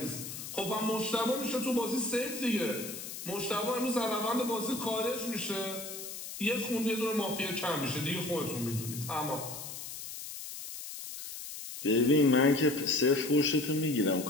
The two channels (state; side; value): noise; left; hiss, 9 dB below the sound